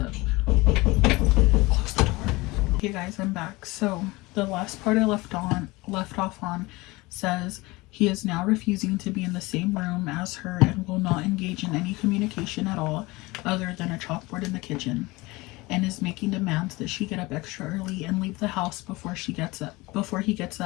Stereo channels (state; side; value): quieter; right; 22.2 dB